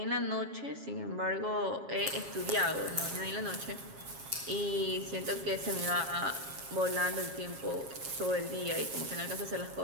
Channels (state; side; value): late; left; 7.4 ms